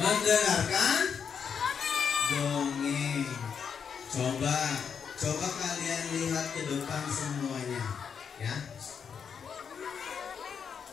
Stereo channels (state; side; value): quieter; right; 6.9 dB